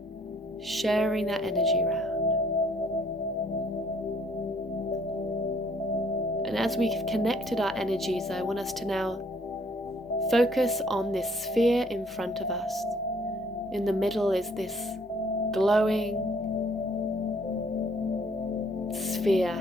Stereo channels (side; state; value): both; normal; correlation 0.62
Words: sharing that energy around. And as we've connected our energies, I want us to now focus on this sphere in front of us. In the middle is this glowing sphere,